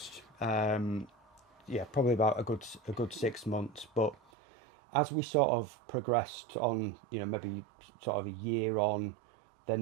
Yeah, probably about a good 6 months. But as we sort of progressed on, maybe sort of a year on,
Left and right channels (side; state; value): left; drops out; at 4.2 s